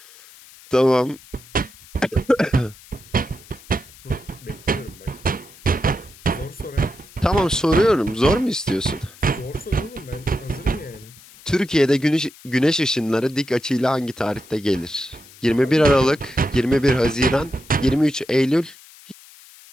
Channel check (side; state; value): left; noise; hiss, 22 dB below the sound